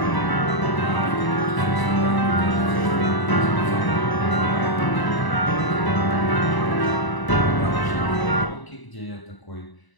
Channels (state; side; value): late; right; 1.0 ms